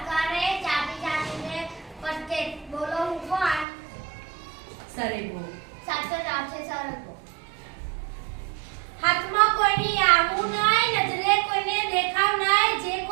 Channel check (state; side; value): drops out; left; at 3.7 s